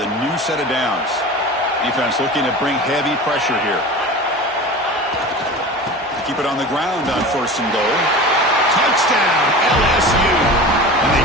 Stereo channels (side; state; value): both; normal; correlation 0.34